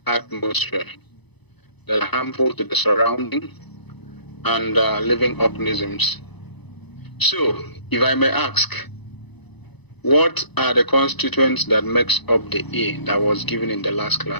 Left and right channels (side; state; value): right; late; 0.99 ms